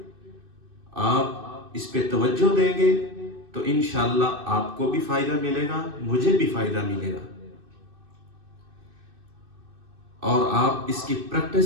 آپ اس پہ توجہ دیں گے تو انشاءاللہ آپ کو بھی فائدہ ملے گا، مجھے بھی فائدہ ملے گا، اور آپ اس کی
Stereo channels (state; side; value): late; left; 2.6 ms